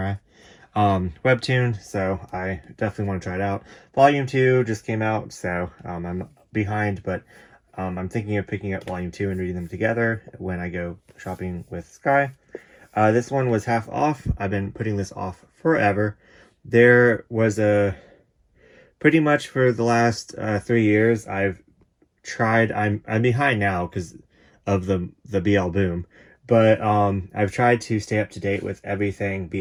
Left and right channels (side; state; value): both; identical; correlation 1.00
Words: Webtoon, so I definitely want to try it out. Volume 2 just came out, so I'm behind, but I'm thinking of picking up Volume 2 and reading them together when I go shopping with Sky. This one was half off. I've been putting this off forever. There was pretty much for the last 3 years, I've tried, I'm behind now because of the BL boom, but I've tried to stay up to date with everything